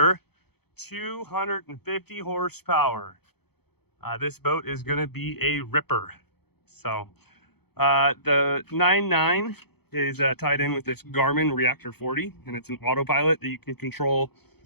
250 horsepower. This boat is going to be a ripper. So the 9.9 is tied in with this Garmin Reactor 40, and it's an autopilot that you can control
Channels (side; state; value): right; late; 0.97 ms